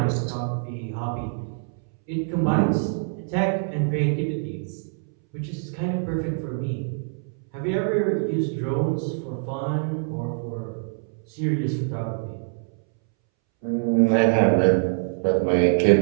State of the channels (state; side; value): silent; left; 62 dB below the other